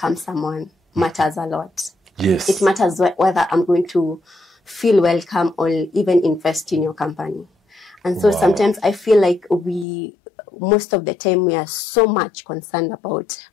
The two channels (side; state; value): right; drops out; at 9.9 s